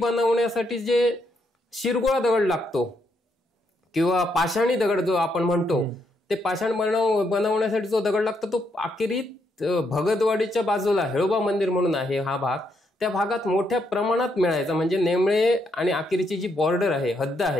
जे शिरगोळा दगड लागतो किंवा पाषाणी दगड जो आपण म्हणतो, ते पाषाण बनवण्यासाठी जो दगड लागतो तो आकेरीत भगतवाडीच्या बाजूला हेळोबा मंदिर म्हणून आहे हा भाग, त्या भागात मोठ्या प्रमाणात मिळायचा. म्हणजे नेमळे आणि आकेरीची जी बॉर्डर आहे, हद्द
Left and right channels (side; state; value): both; normal; correlation 0.77